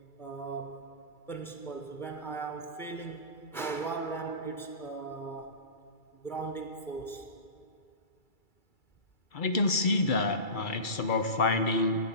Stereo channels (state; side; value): late; right; 2.3 ms